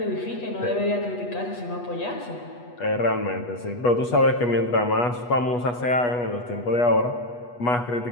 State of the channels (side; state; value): right; late; 8.2 ms